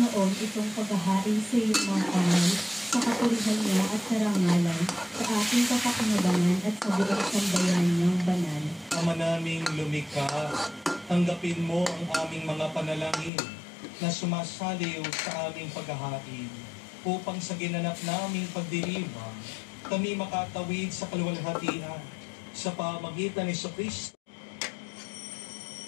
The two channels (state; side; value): drops out; right; at 13.3 s